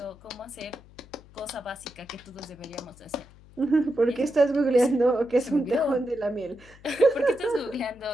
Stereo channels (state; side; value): noise; left; hum, 23 dB below the sound